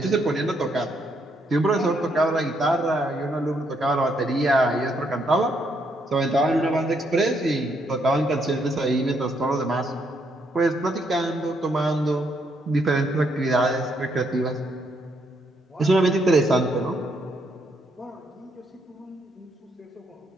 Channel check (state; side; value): normal; both; correlation 0.74